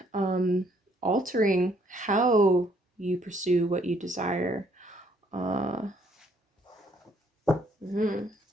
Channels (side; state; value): both; normal; correlation 0.66